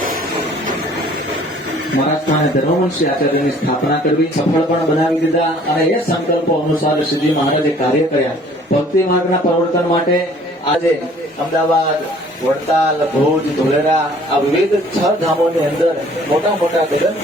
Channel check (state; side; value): normal; both; correlation 0.55